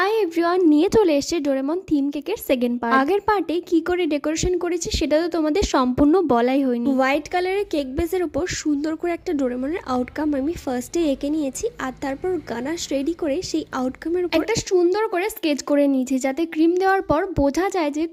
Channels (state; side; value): identical; both; correlation 1.00